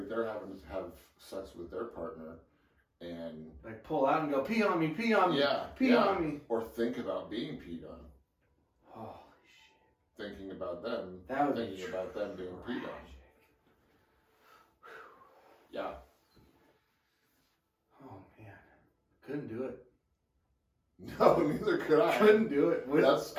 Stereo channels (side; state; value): both; identical; correlation 1.00